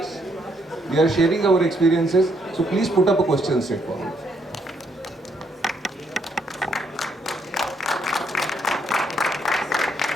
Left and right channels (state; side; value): normal; both; correlation 0.73